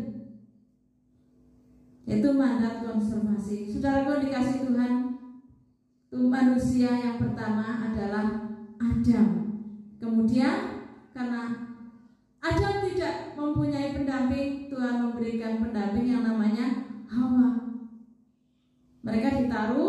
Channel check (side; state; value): both; identical; correlation 1.00